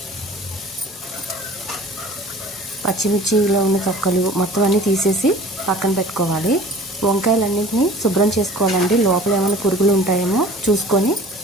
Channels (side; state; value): both; normal; correlation 0.44